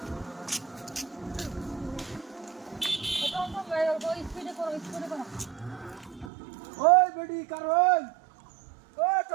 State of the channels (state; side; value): drops out; left; at 6.3 s